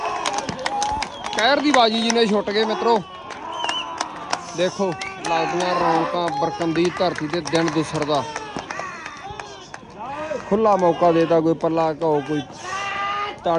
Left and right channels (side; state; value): both; identical; correlation 1.00